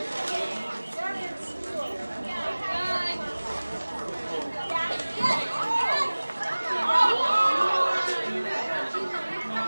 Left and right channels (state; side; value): inverted; both; correlation -1.00